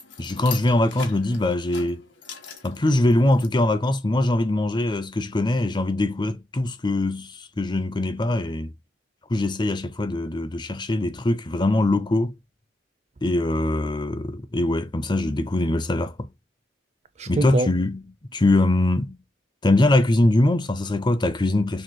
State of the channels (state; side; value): normal; both; correlation 0.84